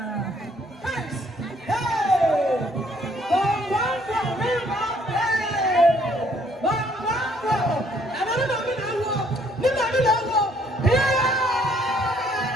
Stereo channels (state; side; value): normal; both; correlation 0.64